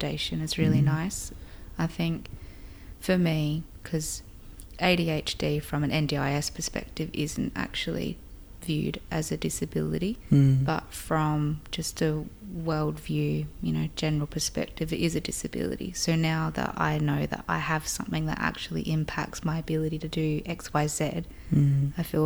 is really nice. I think for me, because ADHD from an NDIS perspective isn't actually viewed as a disability, but from just a world view, general perspective, it is a disability. So now that I know that I have something that actually impacts my ability to do X, Y, Z, I feel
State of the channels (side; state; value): both; identical; correlation 1.00